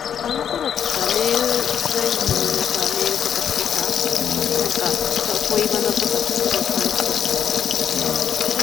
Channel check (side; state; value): right; quieter; 8.5 dB